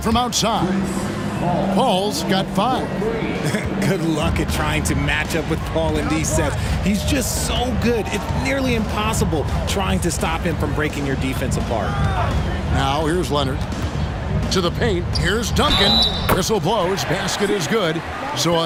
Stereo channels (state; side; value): identical; both; correlation 1.00